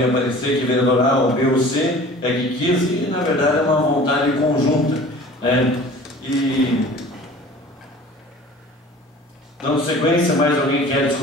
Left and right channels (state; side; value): normal; both; correlation 0.44